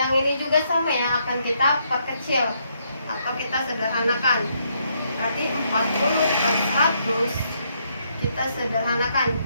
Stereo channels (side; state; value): both; inverted; correlation -0.74